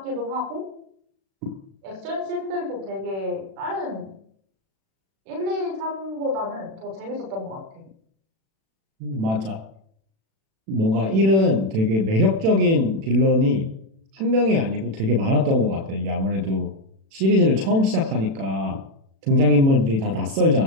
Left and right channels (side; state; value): left; late; 36 ms